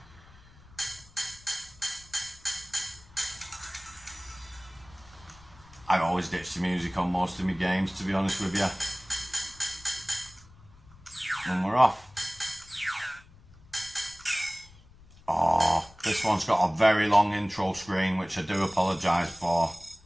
I always ditch the music on most of my games, to be honest with you. And we're off. Oh, this one's got a very long intro screen, which I do apologise for.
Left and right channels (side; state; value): left; noise; rumble, 24 dB below the sound